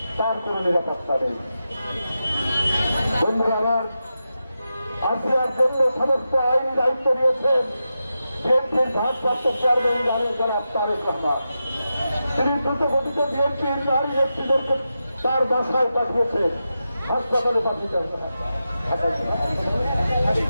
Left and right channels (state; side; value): inverted; both; correlation -0.90